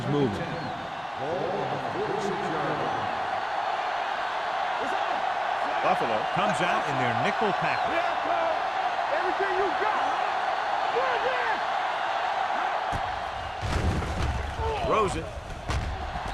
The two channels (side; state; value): both; identical; correlation 1.00